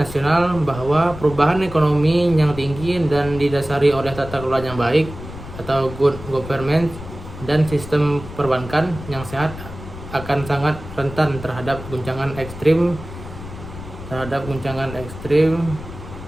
bahwa perubahan ekonomi yang tinggi dan didasari oleh tata kelola yang baik atau good government dan sistem perbankan yang sehat akan sangat rentan terhadap guncangan ekstrim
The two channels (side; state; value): left; noise; rumble, 12 dB below the sound